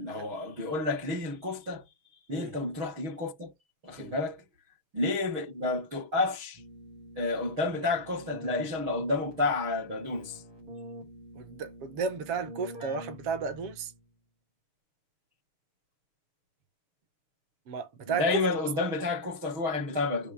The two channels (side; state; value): left; late; 6.4 ms